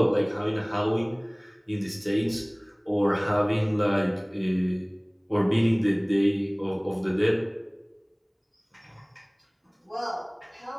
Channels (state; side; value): identical; both; correlation 1.00